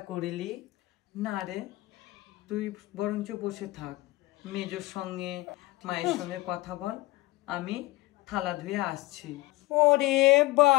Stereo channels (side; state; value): right; quieter; 19.8 dB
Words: করিলি। না রে, তুই বরঞ্চ বসে থাক, মেজোর সঙ্গে মায়ের সঙ্গে কথা বল, আমি থালা ধুয়ে আসছি। ওরে